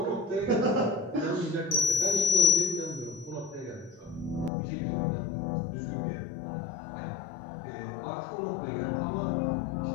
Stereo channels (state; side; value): drops out; right; at 4.5 s